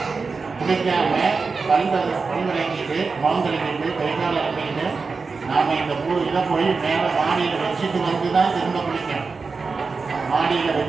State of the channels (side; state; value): left; quieter; 4.6 dB